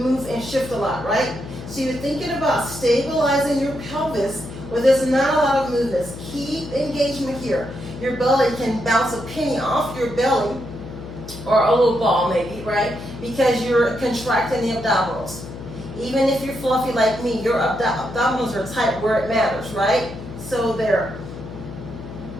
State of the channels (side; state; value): left; noise; hum, 12 dB below the sound